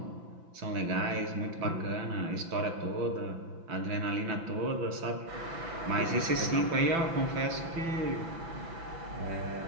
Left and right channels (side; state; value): left; late; 6.0 ms